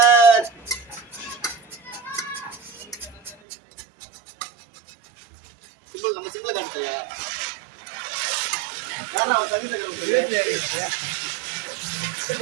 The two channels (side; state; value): left; drops out; at 3.4 s